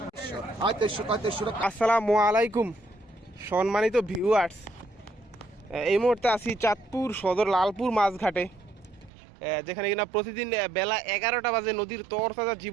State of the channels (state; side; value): drops out; left; at 9.1 s